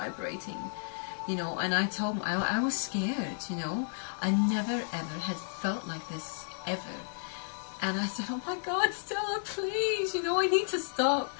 you know. And I told him, I was scared, you know. I never ever had felt like this ever. And I said, oh my God, Stella, please, you know, I need to stop.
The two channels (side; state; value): right; silent; digital silence